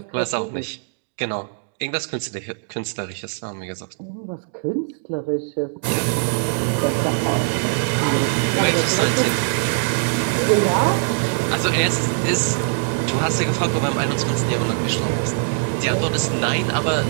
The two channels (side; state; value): left; silent; digital silence